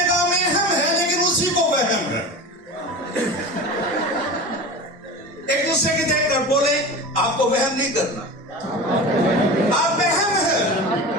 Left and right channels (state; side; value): normal; both; correlation 0.31